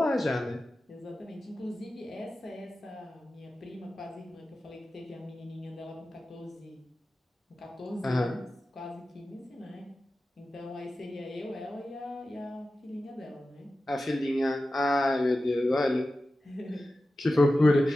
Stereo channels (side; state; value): both; normal; correlation 0.94